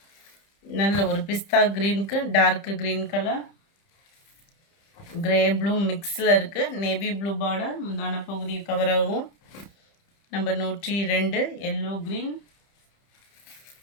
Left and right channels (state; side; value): late; right; 30 ms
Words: நல்ல ஒரு பிஸ்தா க்ரீனுக்கு dark green colour. Grey blue மிக்ஸில் இருக்குது. நேவி ப்ளூ பார்டர் முந்தான பகுதி கவர் ஆகும். Number 102 yellow green.